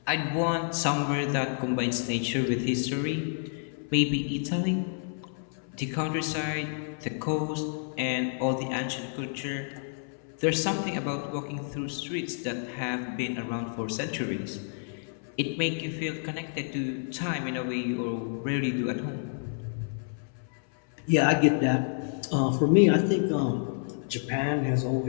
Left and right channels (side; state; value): right; silent; 57 dB below the other